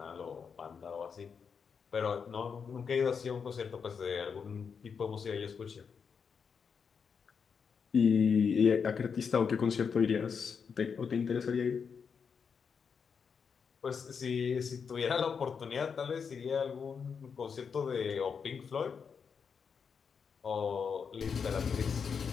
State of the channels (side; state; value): right; quieter; 6.2 dB